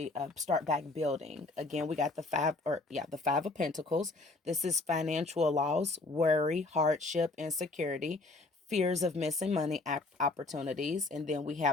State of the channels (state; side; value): quieter; right; 3.2 dB